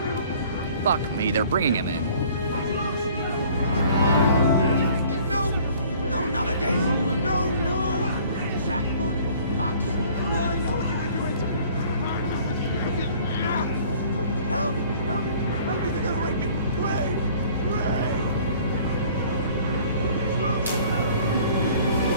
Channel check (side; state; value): both; inverted; correlation -0.53